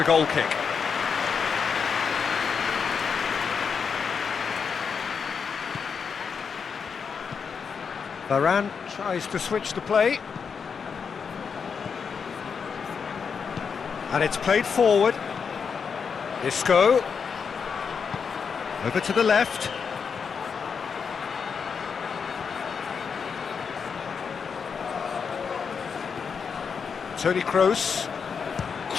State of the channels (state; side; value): quieter; right; 6.1 dB